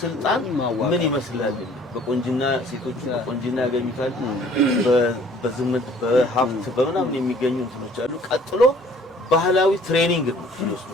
ስልጣን ምን ይመስላል? በቆንጅና ሴቶቹ በቆንጅና ያገኙታል። በዝምት በሀብት በመናምን የሚገኙ እንትኖች አሉ። ቀጥሎ ባህላዊ ትሬኒንግ ነው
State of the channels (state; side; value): normal; both; correlation 0.55